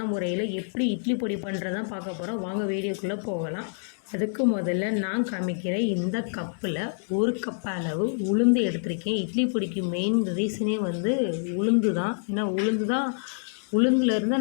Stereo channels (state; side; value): silent; right; digital silence